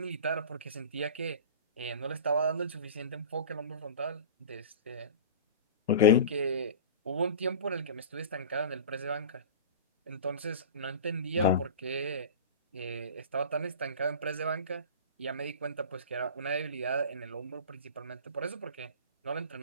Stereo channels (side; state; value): both; inverted; correlation -0.33